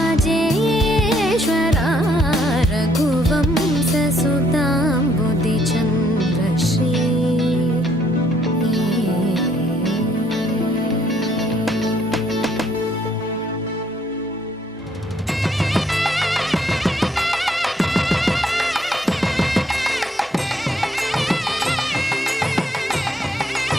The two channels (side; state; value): both; normal; correlation 0.69